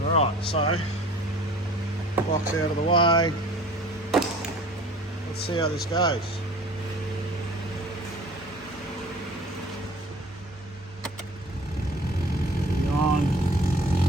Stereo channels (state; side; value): normal; both; correlation 0.48